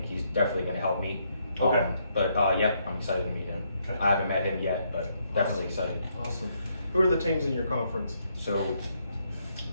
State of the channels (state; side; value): inverted; both; correlation -0.74